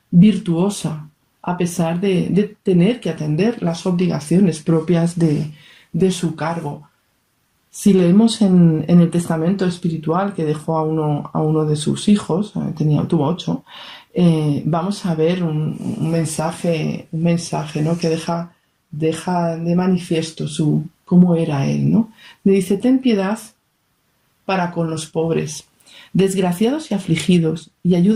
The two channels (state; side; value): identical; both; correlation 1.00